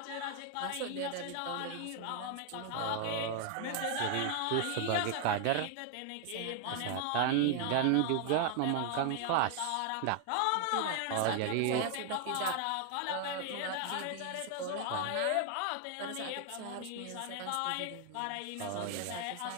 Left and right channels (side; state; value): both; different; correlation 0.00